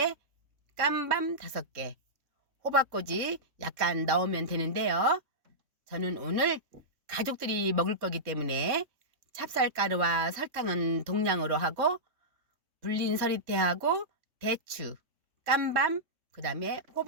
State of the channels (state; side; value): late; left; 3.6 ms